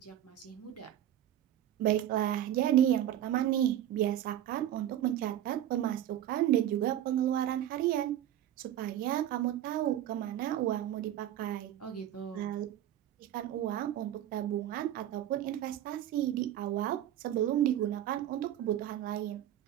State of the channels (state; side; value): quieter; left; 11.8 dB